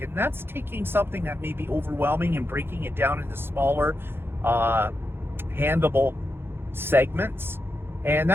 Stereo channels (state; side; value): late; left; 0.11 ms